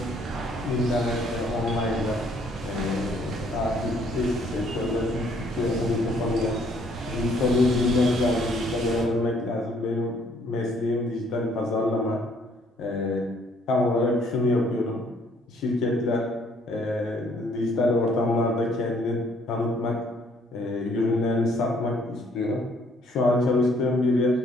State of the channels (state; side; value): normal; both; correlation 0.64